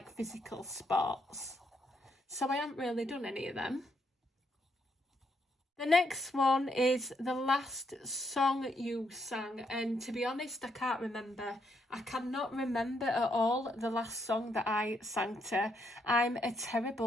physical sports. So I haven't really done any of them. The next one is the last song you sang, and to be honest, I can't remember. I cannot remember at all the last song that I sang to. I'm a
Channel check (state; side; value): normal; both; correlation 0.76